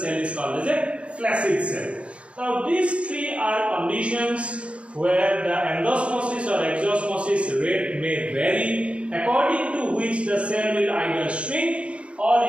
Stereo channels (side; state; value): left; late; 0.061 ms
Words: is called as a flaccid cell. Now these three are conditions where the endosmosis or exosmosis rate may vary, according to which the cell will either shrink or